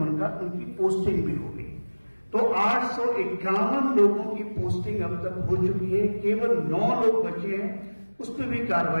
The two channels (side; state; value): both; inverted; correlation -1.00